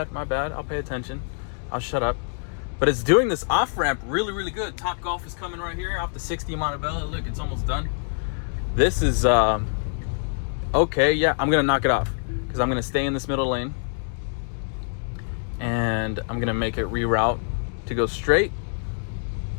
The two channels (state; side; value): silent; right; 62 dB below the other